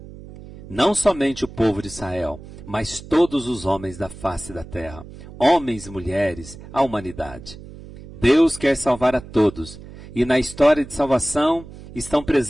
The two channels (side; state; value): right; noise; hum, 16 dB below the sound